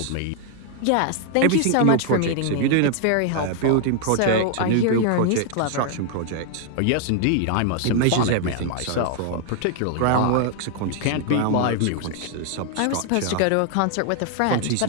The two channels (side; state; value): both; different; correlation 0.00